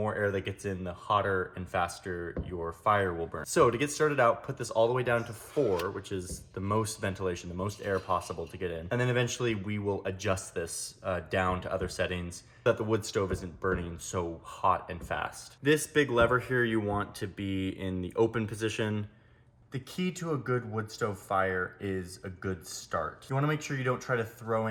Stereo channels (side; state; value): both; identical; correlation 1.00